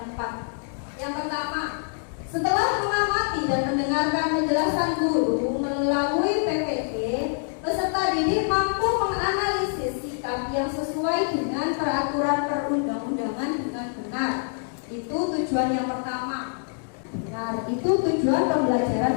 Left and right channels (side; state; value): right; silent; 59 dB below the other